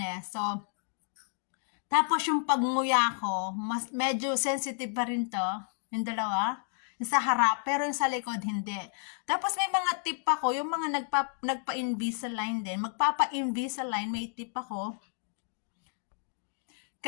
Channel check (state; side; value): silent; right; 57 dB below the other